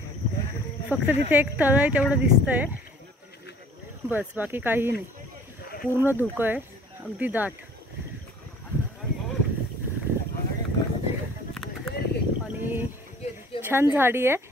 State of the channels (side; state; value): both; normal; correlation 0.51